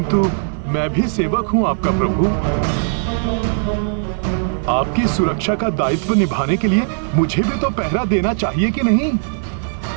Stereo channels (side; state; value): left; silent; 66 dB below the other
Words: मैं भी सेवक हूँ आपका प्रभु। आपकी सुरक्षा का दायित्व निभाने के लिए मुझे भी तो पहरा देना चाहिए कि नहीं?